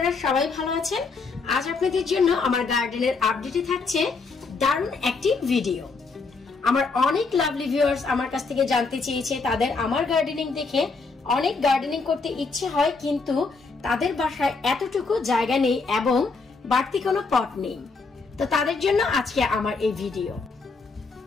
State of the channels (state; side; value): quieter; right; 4.3 dB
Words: সবাই ভালো আছেন। আজ আপনাদের জন্য আমার গার্ডেনের আপডেটে থাকছে দারুণ একটি ভিডিও। আমার অনেক লাভলি ভিউয়ার্স আমার কাছ থেকে জানতে চেয়েছে, তাদের আমার গার্ডেনিং দেখে অনেক গার্ডেনিং করতে ইচ্ছে হয়, কিন্তু তাদের বাসায় এতটুকু জায়গা নেই এবং বাড়তি কোনো পট নেই। তো তাদের জন্য আজকে আমার এই ভিডিও।